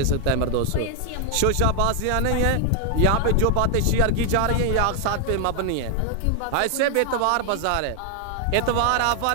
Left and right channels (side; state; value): both; different; correlation 0.00